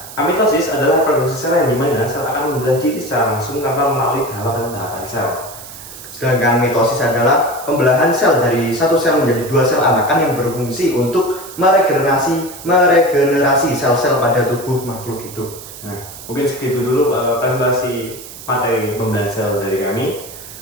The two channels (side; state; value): right; noise; hiss, 15 dB below the sound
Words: amitosis adalah produksi sel yang dimana sel akan membelah diri secara langsung tanpa melalui tahapan-tahapan sel. Sedangkan mitosis adalah pembelahan sel dari satu sel menjadi dua sel anakan yang berfungsi untuk meregenerasi sel-sel pada tubuh makhluk hidup. Nah, mungkin segitu dulu presentasi materi pembelahan sel dari kami.